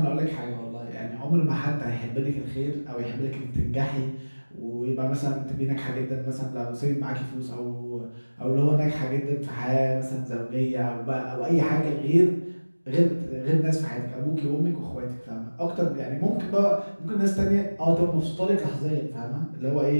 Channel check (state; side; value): inverted; both; correlation -1.00